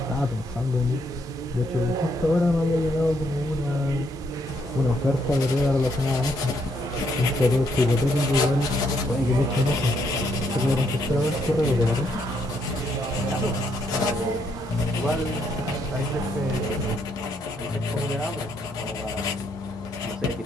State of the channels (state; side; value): normal; both; correlation 0.74